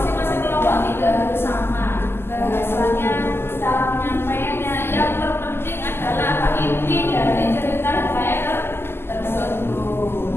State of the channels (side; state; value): right; late; 0.12 ms